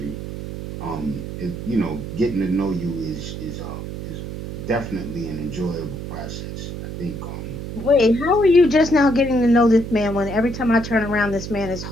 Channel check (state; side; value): noise; right; hum, 8 dB below the sound